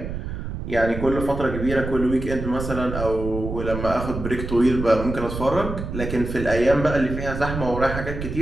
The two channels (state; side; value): noise; right; rumble, 6 dB below the sound